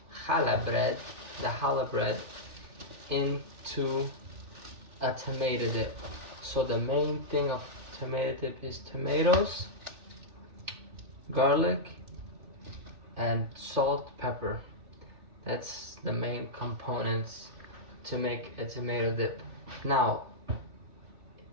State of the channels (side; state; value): left; late; 3.2 ms